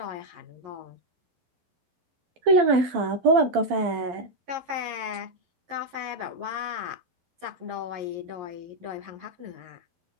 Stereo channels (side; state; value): left; late; 12 ms